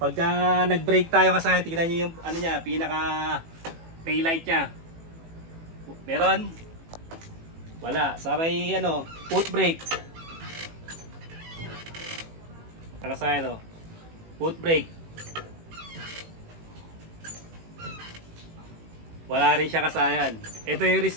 nag-break tayo kasayan, tingnan nyo yung ano niya, pinaka taillight niya. Meron? Wala. Sa may ano, foot brake. Mga kasayan foot brake. Wala rin siya kasayan. Ito yung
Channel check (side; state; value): left; late; 18 ms